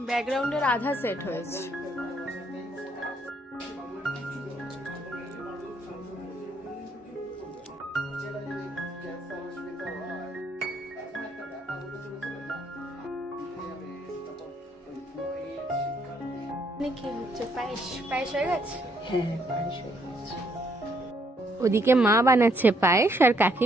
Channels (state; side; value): normal; both; correlation 0.70